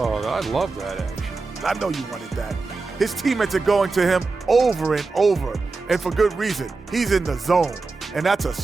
I love that action. I know you wanted that. His teammates are going to him over and over, and for good reason. He's in the zone, and that's a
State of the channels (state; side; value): quieter; left; 3.9 dB